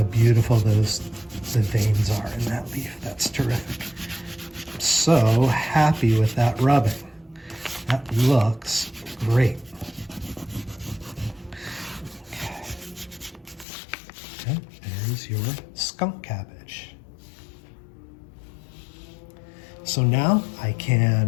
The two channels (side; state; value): right; drops out; at 13.7 s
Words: beautiful the veins are in that leaf. That's terrific. I'm so happy with that rubbing. That looks great. Okay, there's your skunk cabbage. So now I